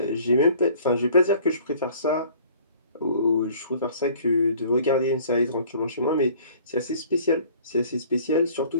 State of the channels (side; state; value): both; inverted; correlation -0.52